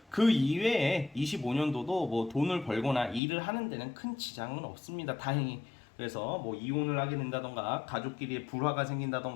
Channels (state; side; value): drops out; right; at 3.2 s